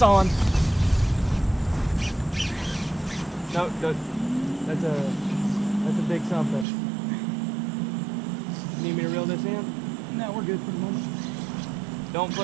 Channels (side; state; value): left; drops out; at 6.7 s